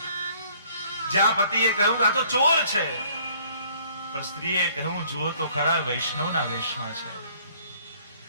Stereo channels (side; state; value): both; inverted; correlation -0.60